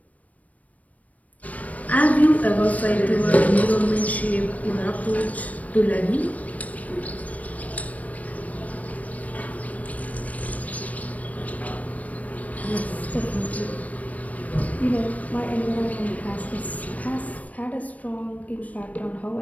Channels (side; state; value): right; late; 0.070 ms